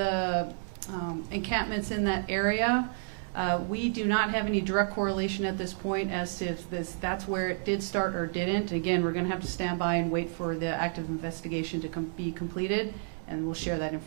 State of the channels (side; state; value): left; silent; digital silence